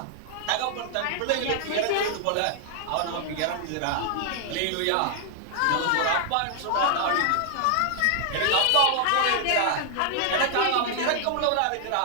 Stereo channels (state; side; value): different; both; correlation 0.00